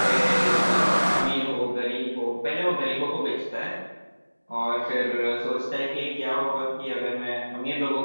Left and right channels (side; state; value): both; inverted; correlation -1.00